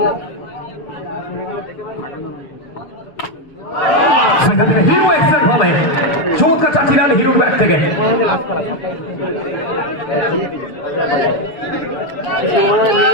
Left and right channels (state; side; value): late; right; 7.1 ms